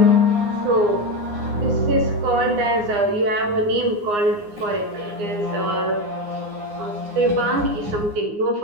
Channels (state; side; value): late; left; 9.7 ms